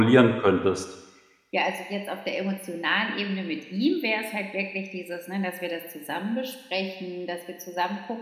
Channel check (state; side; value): identical; both; correlation 1.00